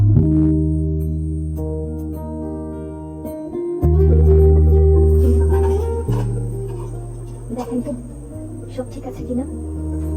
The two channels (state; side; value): identical; both; correlation 1.00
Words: দেখেন তো সব ঠিক আছে কিনা।